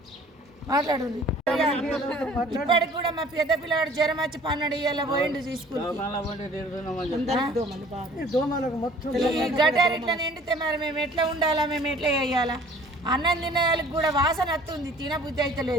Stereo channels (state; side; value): normal; both; correlation 0.52